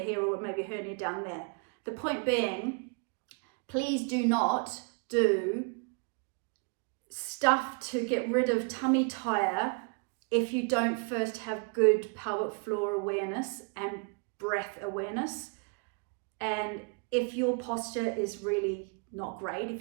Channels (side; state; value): left; quieter; 35.4 dB